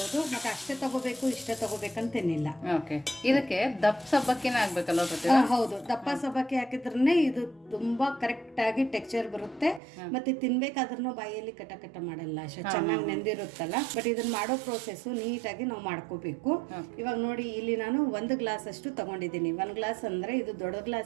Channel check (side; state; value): left; drops out; at 9.8 s